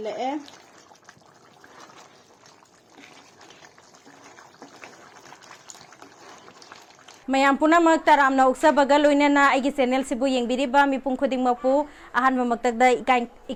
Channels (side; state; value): both; identical; correlation 1.00